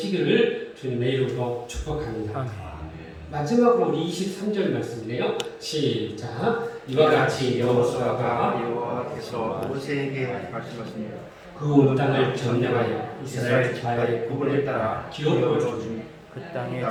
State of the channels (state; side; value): identical; both; correlation 1.00